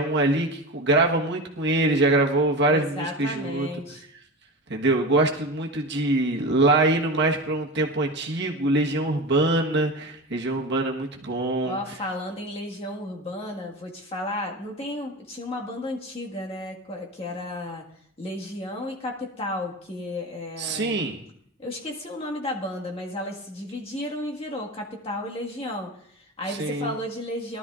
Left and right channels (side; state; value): both; normal; correlation 0.27